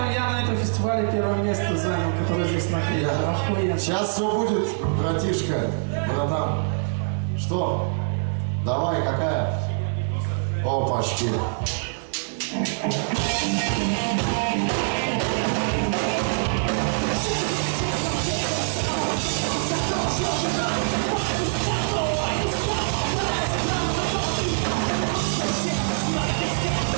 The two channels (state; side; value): silent; left; 62 dB below the other